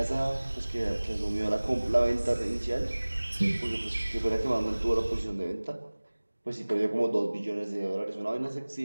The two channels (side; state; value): both; inverted; correlation -1.00